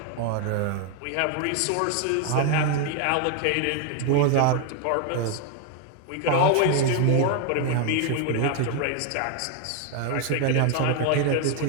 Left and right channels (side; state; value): both; different; correlation 0.01